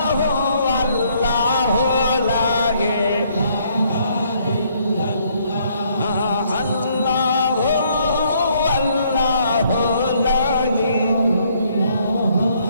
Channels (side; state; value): both; inverted; correlation -0.67